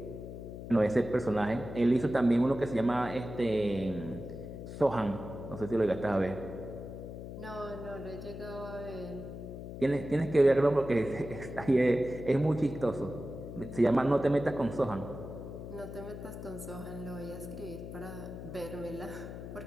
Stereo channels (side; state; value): left; noise; hum, 10 dB below the sound